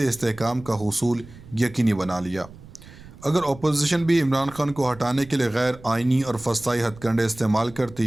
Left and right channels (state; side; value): noise; right; rumble, 19 dB below the sound